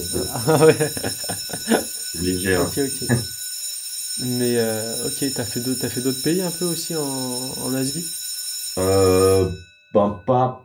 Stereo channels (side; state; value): both; identical; correlation 1.00